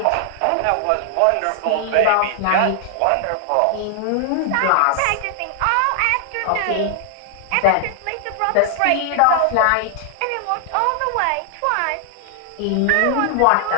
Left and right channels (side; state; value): both; different; correlation 0.00